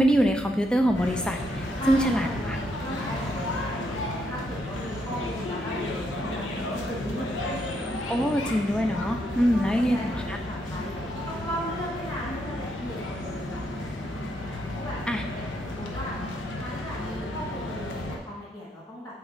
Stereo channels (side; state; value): both; normal; correlation 0.76